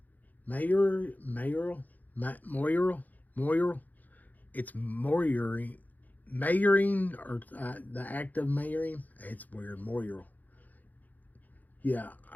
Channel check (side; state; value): right; late; 0.082 ms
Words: Moyarl. It's Mayoring, or the act of mayoring. It's weird, Moyarl. Yeah,